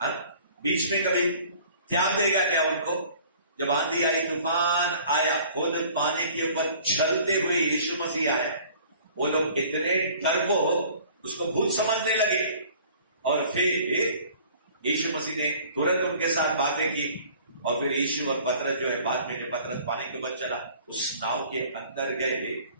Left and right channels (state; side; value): inverted; both; correlation -0.50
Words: बीच में कभी त्याग देगा क्या उनको? जब आंधी आई, तूफान आया, खुद पानी के ऊपर चलते हुए यीशु मसीह आया, वो लोग इतने डरपोक उसको भूत समझने लगे, और फिर यीशु मसीह ने तुरंत उनके साथ बातें की, और फिर यीशु और पतरस जो है, बाद में पतरस पानी के ऊपर चला, उस नाव के अंदर गए,